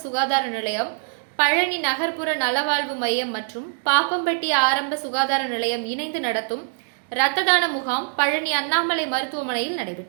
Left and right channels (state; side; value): silent; left; digital silence